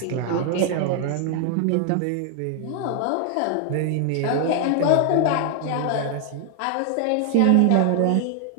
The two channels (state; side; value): different; both; correlation 0.00